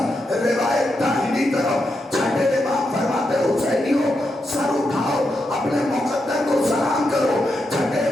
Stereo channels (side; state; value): both; normal; correlation 0.84